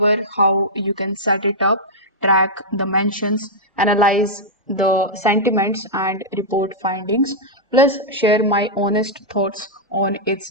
how you can set it up, track the mentions, analyze the sentiments and report findings, plus share my honest thoughts on its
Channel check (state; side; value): normal; both; correlation -0.07